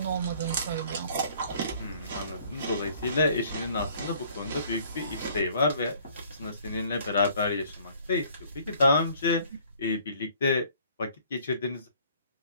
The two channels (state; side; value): inverted; both; correlation -0.57